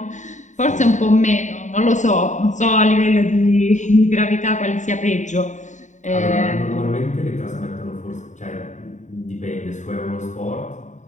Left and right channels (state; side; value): late; right; 0.35 ms